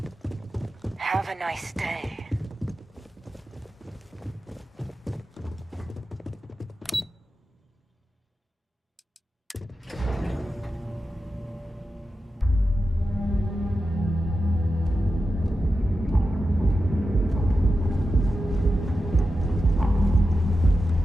Have a nice day.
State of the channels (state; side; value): normal; both; correlation 0.91